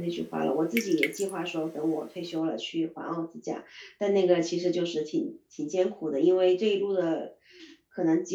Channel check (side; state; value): both; identical; correlation 1.00